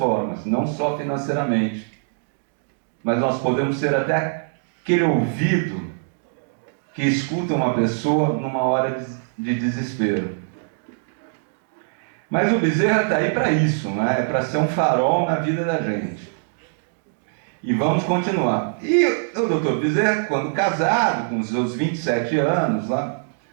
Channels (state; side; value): silent; left; digital silence